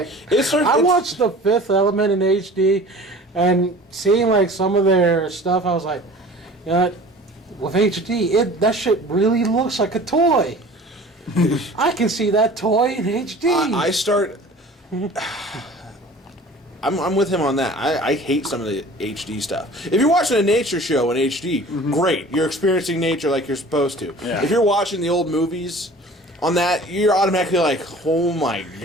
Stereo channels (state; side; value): normal; both; correlation 0.44